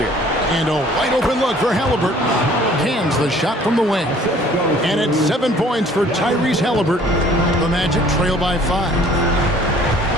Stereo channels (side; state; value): both; normal; correlation 0.54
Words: And a wide open look for Halliburton. Cans the shot from the wing. And it's 7 points for Tyrese Halliburton. The Magic trail by 5.